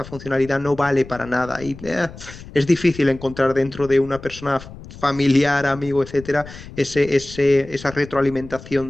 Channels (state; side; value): noise; left; rumble, 16 dB below the sound